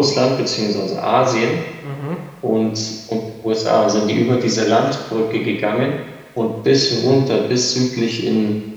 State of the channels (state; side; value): identical; both; correlation 1.00